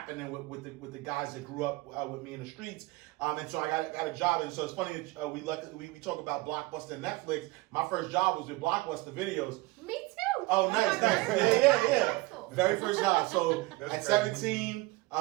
with the guys that grew up with me in the streets, and so I got a job. And so it's funny that we talk about Blockbuster and Netflix. My first job was with Blockbuster Videos. Me too. Oh, nice. Yeah. Very first job. So at 17,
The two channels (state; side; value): quieter; left; 21.5 dB